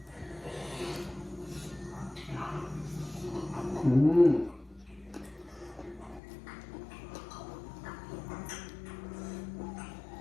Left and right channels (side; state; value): right; drops out; at 6.2 s